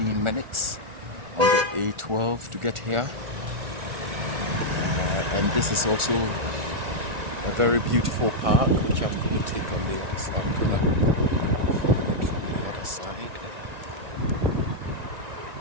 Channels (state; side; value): late; left; 1.4 ms